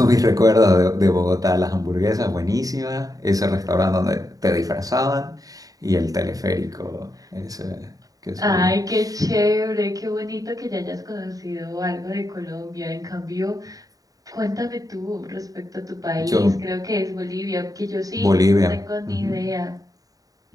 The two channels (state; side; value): late; left; 0.18 ms